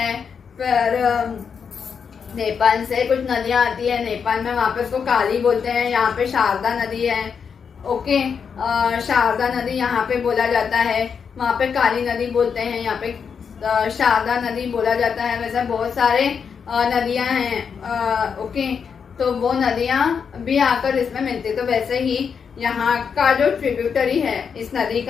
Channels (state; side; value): quieter; right; 6.5 dB